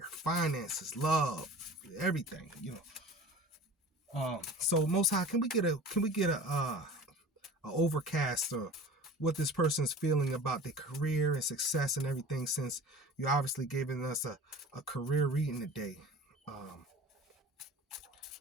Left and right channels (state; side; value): normal; both; correlation 0.40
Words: finances, love, everything, So Most High, can we get a overcast of what this person's feeling about their career and success and everything, since you obviously giving us a career reading today. And